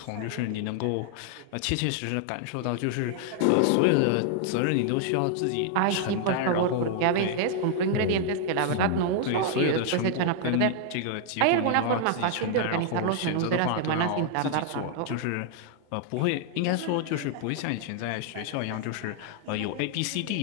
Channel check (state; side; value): different; both; correlation 0.00